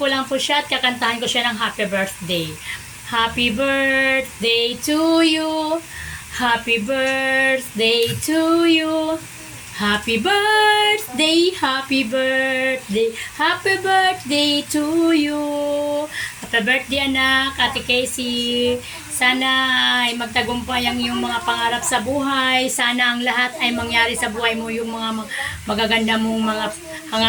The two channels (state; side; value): identical; both; correlation 1.00